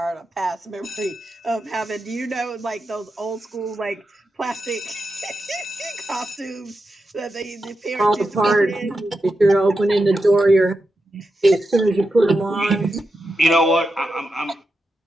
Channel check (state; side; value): normal; both; correlation 0.88